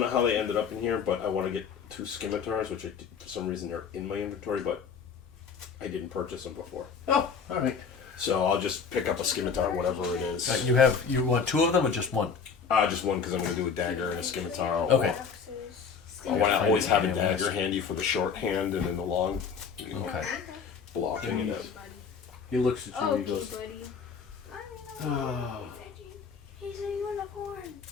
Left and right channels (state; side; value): quieter; right; 6.0 dB